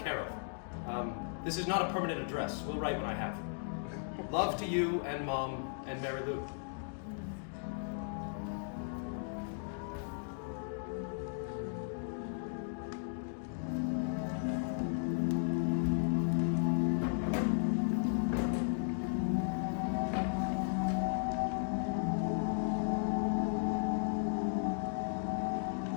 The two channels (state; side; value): silent; right; digital silence